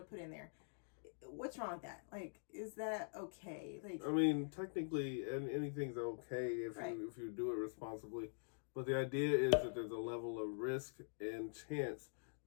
put in there. What's wrong with that? Like, is that okay? Like, I mean, technically, anything's okay if right. you do it responsibly. But the idea is that there's a level of risk and chance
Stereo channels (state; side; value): silent; right; digital silence